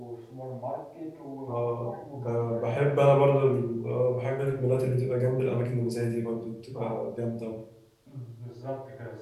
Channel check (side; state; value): both; identical; correlation 1.00